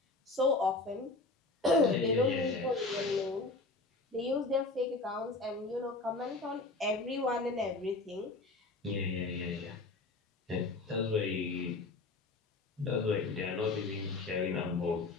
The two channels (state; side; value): quieter; right; 3.4 dB